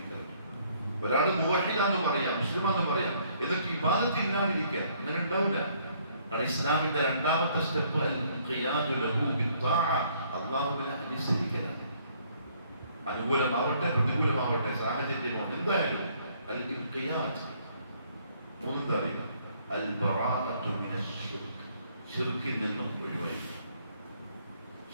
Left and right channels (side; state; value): both; inverted; correlation -0.65